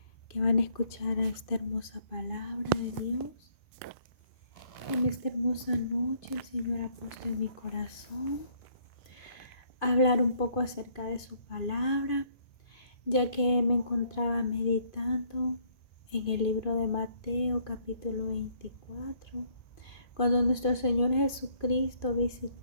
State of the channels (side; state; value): right; late; 2.5 ms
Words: que van a escuchar a esta hermosa palabra de Dios. En esta hermosa noche el Señor ha puesto en mi corazón hablar un poco acerca de su palabra, ya que me encontraba meditando en el libro de Mateo capítulo 24. Cuando nuestro Señor Jesucristo